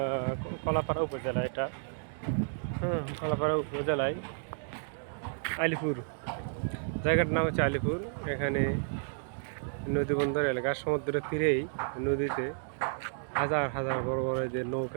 কলাপাড়া উপজেলা। এটা কলাপাড়া উপজেলায় আলিপুর, জায়গাটার নাম হচ্ছে আলিপুর। এখানে নদী বন্দর এলাকা, সমুদ্রের তীরেই নদীতে হাজার হাজার বড় বড় যে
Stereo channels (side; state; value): left; silent; digital silence